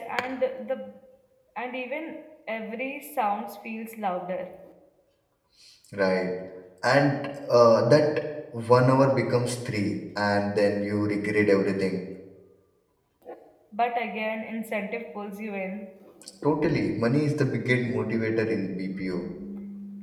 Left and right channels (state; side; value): identical; both; correlation 1.00